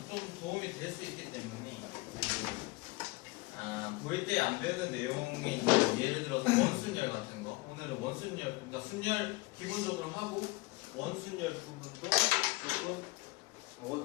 좀 도움이 될 수 있기 때문에 고1 때 안 배우는 내용이 있는 예를 들어서 원순열 같은 거 오늘은 원순열 그러니까 순열 기본적으로 하고 원순열 부분도 조금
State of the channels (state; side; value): quieter; right; 23.4 dB